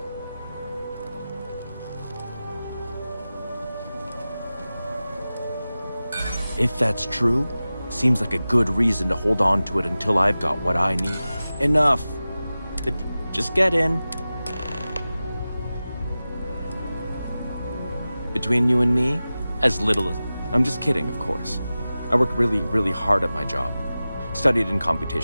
If that's true, seems like a good reason to hold on to it until I've got what I need. Enough. Just get in. Between you and me, as little as... I'm just kidding, of course. I work really, really hard at my job. Studied in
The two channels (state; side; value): inverted; both; correlation -0.95